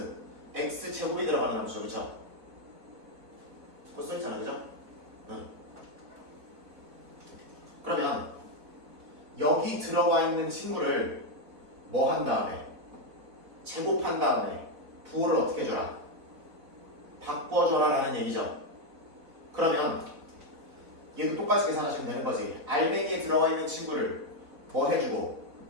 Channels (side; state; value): left; late; 4.2 ms